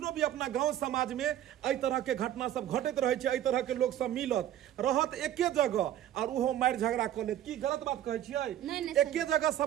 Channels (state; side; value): quieter; left; 11.8 dB